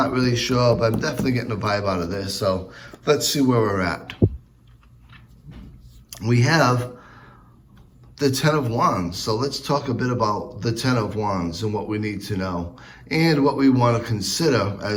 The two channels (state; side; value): identical; both; correlation 1.00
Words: really sure, but I'm definitely getting a vibe out of this. So let's see where we're at. We have the Ten of Wands. So let's talk a bit about the Ten of Wands and what we need to know and what we want to consider